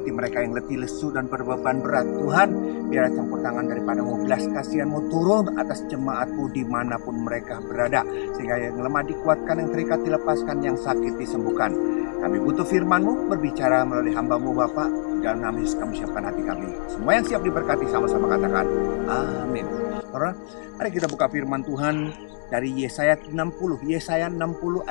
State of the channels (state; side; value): quieter; right; 39.4 dB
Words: mereka yang letih, lesu, dan berbeban berat, Tuhan, biar campur tangan daripada-Mu, belas kasihan-Mu turun atas jemaat-Mu dimanapun mereka berada. Sehingga yang lemah dikuatkan, yang terikat dilepaskan, yang sakit disembuhkan. Kami butuh firman-Mu berbicara melalui hamba-Mu Bapak. Dalam nama Yesus kami siapkan hati kami. Semua yang siap diberkati sama-sama katakan amin. Saudara, mari kita buka firman Tuhan dari Yesaya 60. Yesaya 60